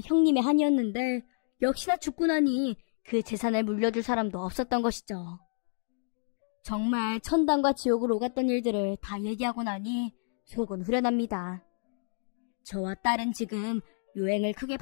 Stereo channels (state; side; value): silent; right; digital silence